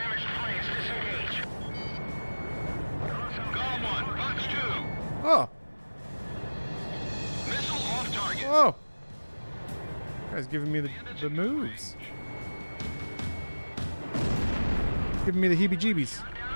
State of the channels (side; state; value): both; inverted; correlation -1.00